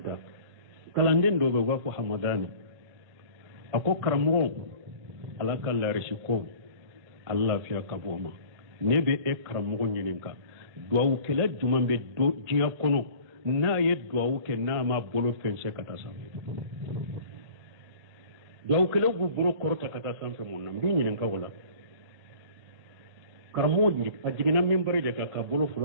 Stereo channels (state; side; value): late; left; 1.8 ms